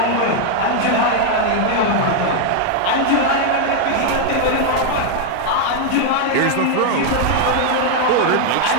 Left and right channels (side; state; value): both; different; correlation 0.00